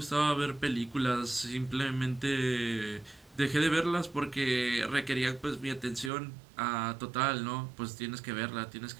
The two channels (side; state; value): left; drops out; at 6.1 s